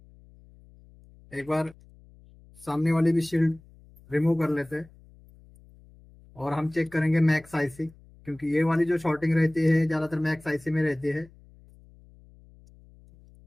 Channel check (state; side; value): noise; left; hum, 25 dB below the sound